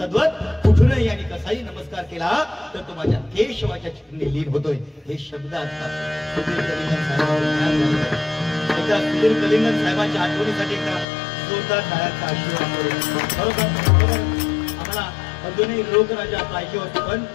कुठूनही आणि कसाही नमस्कार केला तर तो माझ्या केशवाच्या चिन्हे लीन होतोय. हे शब्द असतात सुधीर कलिंगन साहेबांना. एकदा सुधीर कलिंगन साहेबांच्या आठवणीसाठी एकदा जोरदार टाळ्यांचा आशीर्वाद करू. बरोबर आम्हाला अजूनही लोकराजा पाहिजे होते, पण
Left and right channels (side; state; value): right; drops out; at 11.1 s